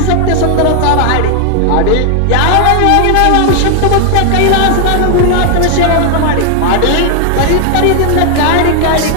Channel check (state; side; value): different; both; correlation 0.00